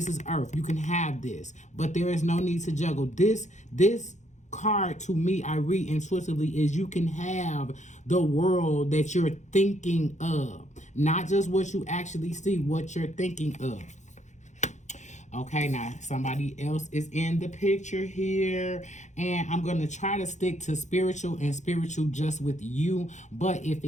is Earth. You can have this, but there is no need to juggle. This card, to me, I read intuitively, is you can have the world that you're thinking of, not just what you actually see, what you're thinking of. Okay, now somebody else is in the picture here, and I'm going to try to stick to spiritual and spiritual just with you, but if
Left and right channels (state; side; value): late; right; 0.34 ms